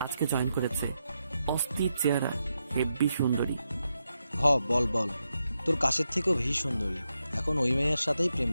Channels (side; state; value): both; inverted; correlation -0.85